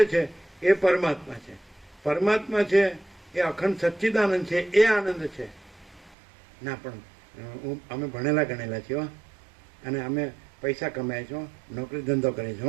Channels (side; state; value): left; drops out; at 6.2 s